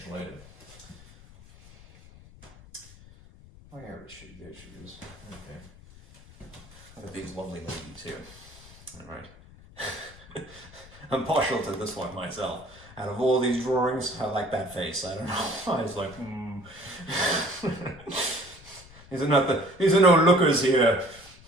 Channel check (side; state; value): left; noise; rumble, 21 dB below the sound